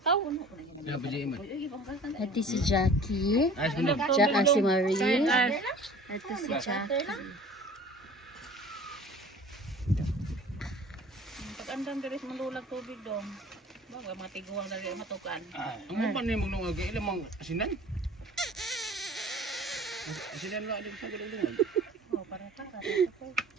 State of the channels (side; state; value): both; normal; correlation 0.46